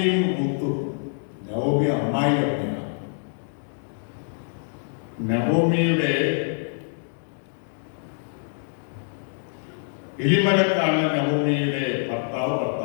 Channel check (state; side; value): silent; right; digital silence